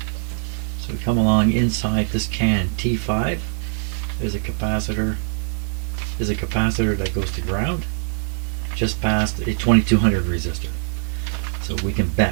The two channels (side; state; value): left; silent; digital silence